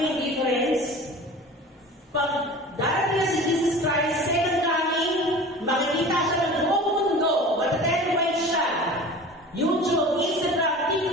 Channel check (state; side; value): normal; both; correlation 0.38